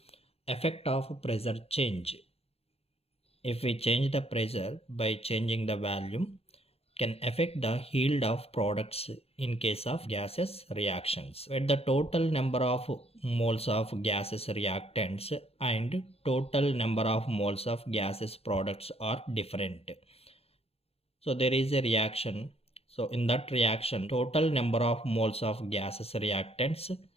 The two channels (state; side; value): late; right; 0.29 ms